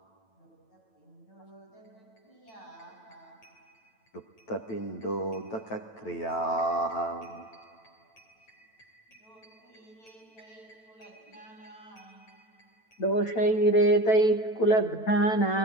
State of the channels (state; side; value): late; right; 9.1 ms